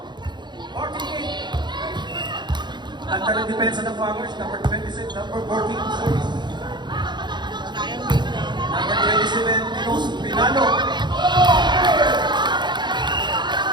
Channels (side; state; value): left; late; 0.21 ms